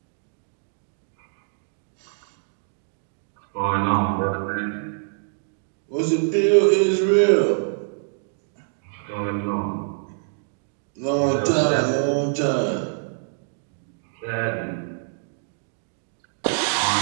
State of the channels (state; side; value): silent; left; digital silence